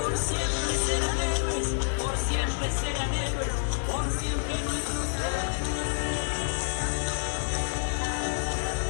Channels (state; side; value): silent; right; digital silence